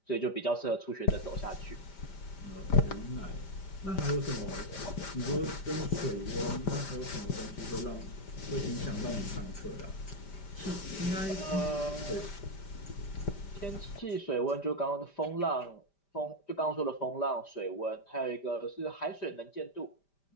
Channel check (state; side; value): late; right; 5.1 ms